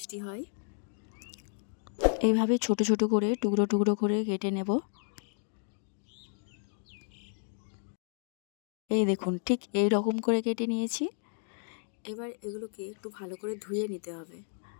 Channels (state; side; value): silent; right; 56 dB below the other